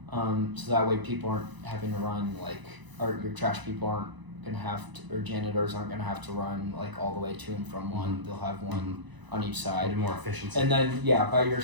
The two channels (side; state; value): left; late; 1.0 ms